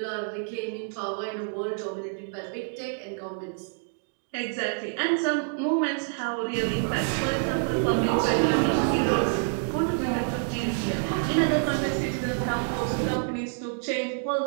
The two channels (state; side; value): silent; left; 60 dB below the other